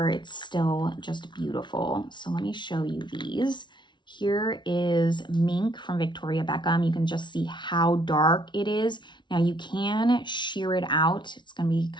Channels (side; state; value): right; late; 0.23 ms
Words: it's still just beautiful. So let me show you these. Here is Mink from Victoria Beckham. You can just see how dark it is. Now you can shear it out. It's gonna be